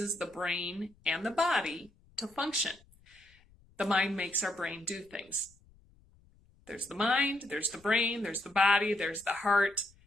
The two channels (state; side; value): noise; left; rumble, 29 dB below the sound